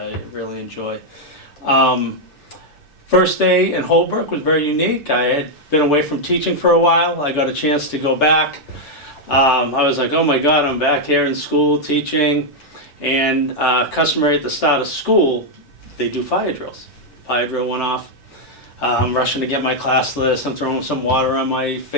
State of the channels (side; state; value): both; normal; correlation -0.02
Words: really enjoy. First day in Holbrook was very unique. I had been away from teaching for a while. I got a chance to go back. I was like, oh my God, I'm back here in school teaching. And customary at the start of school, they do fire drills. Fire drill went off. I'm rushing to get my class list. I'm throwing some water on my